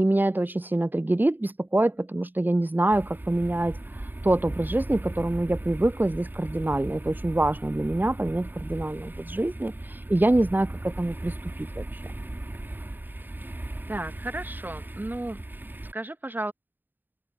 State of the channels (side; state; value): left; late; 0.091 ms